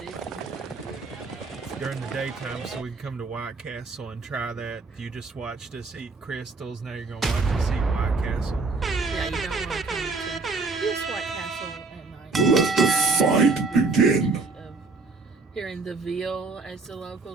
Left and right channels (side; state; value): left; quieter; 3.9 dB